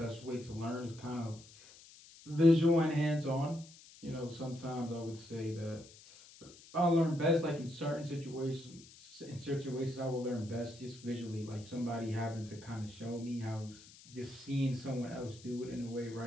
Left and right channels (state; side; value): noise; left; hiss, 21 dB below the sound